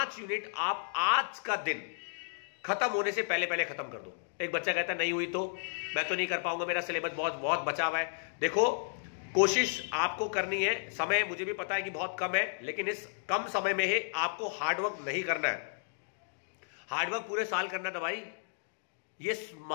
यूनिट आप आज का दिन खत्म होने से पहले पहले खत्म कर दो। एक बच्चा कहता है नहीं हुई तो मैं तो नहीं कर पाऊंगा, मेरा सिलेबस बहुत बहुत बचा हुआ है। देखो, कोशिश आपको करनी है, समय मुझे भी पता है कि बहुत कम है, लेकिन इस कम समय में ही आपको हार्डवर्क नहीं करना है। हार्डवर्क पूरे साल करना था भाई। ये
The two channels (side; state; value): right; silent; digital silence